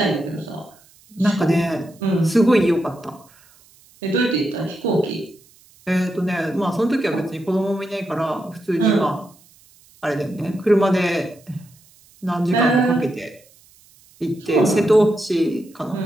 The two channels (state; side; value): noise; right; hiss, 29 dB below the sound